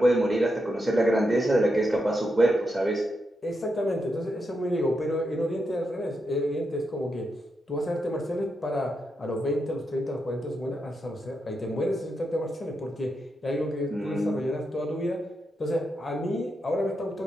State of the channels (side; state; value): both; normal; correlation 0.84